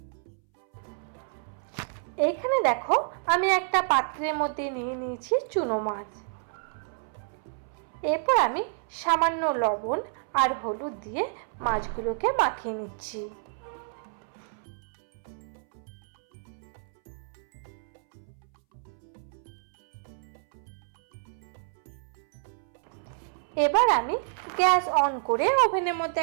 এইখানে দেখো, আমি একটা পাত্রের মধ্যে নিয়ে নিয়েছি চুনো মাছ। এরপর আমি সামান্য লবণ আর হলুদ দিয়ে মাছগুলোকে মাখিয়ে নিচ্ছি। এবার আমি গ্যাস অন করে ওভেনের মধ্যে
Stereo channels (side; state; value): left; silent; 59 dB below the other